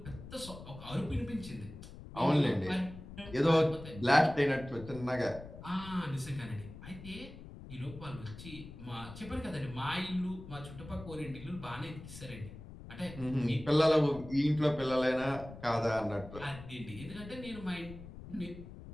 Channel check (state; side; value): noise; left; rumble, 14 dB below the sound